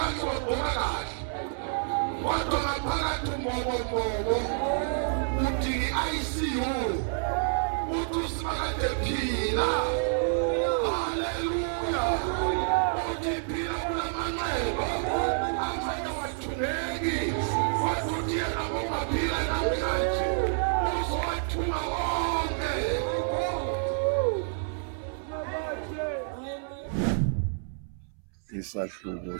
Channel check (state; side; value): silent; left; 59 dB below the other